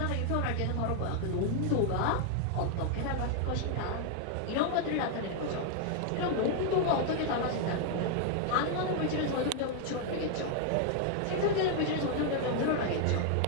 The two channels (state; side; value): different; both; correlation 0.00